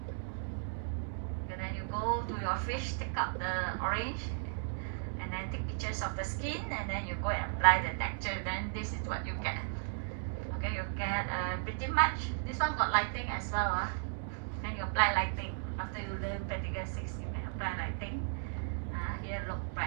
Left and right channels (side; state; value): left; silent; digital silence